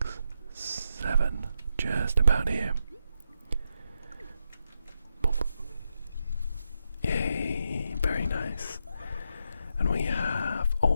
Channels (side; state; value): both; inverted; correlation -0.83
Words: 7. Just about here. Yay, very nice. And we have,